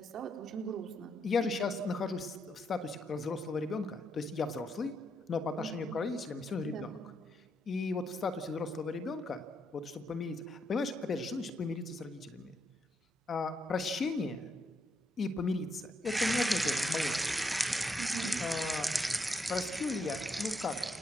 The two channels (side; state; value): both; normal; correlation 0.79